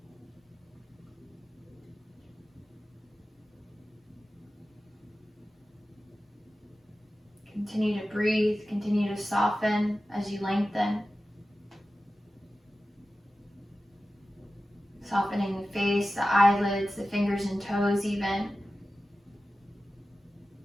Continue to breathe, continue to soften as you lengthen. Softening the face, the eyelids, the fingers and toes even.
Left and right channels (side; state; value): both; normal; correlation 0.94